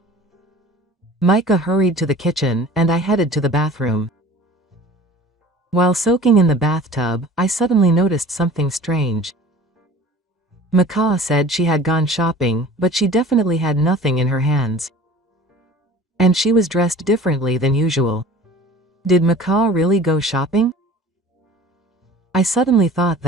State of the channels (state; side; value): normal; both; correlation 0.44